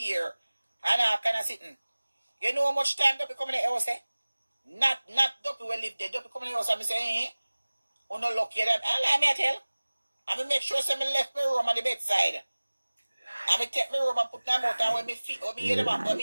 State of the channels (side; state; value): both; inverted; correlation -1.00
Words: ear. And I kind of sitting. You know how much time Duppy come in the house, eh? Not Duppy will live there. Duppy come in the house and me say, oh no lucky them. And let me tell. And me make sure some me left my room on the bedside. And me take me room and put them out, and when me feet, when me hear them, when